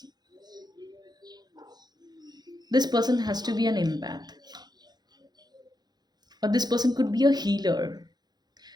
This person has to be an empath, or this person could be a healer.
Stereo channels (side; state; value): left; late; 0.20 ms